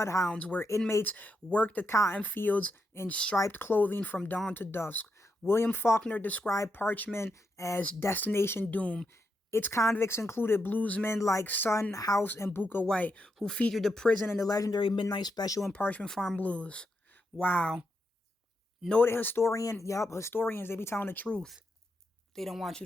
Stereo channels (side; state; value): both; normal; correlation 0.83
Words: where inmates worked the cotton fields in striped clothing from dawn to dusk. William Faulkner described Parchment as Destination Doom. Its convicts included bluesmen like Son House and Booker White, who featured the prison in the legendary Midnight Special and Parchment Farm Blues. Wow. Noted historian, historians, they be telling the truth. They don't want you